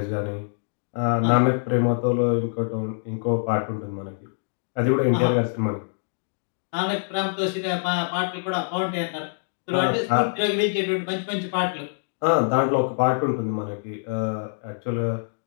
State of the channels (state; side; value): silent; right; digital silence